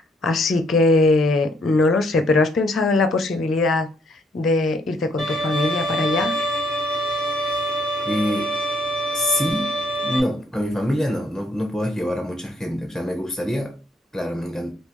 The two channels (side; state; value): both; normal; correlation 0.69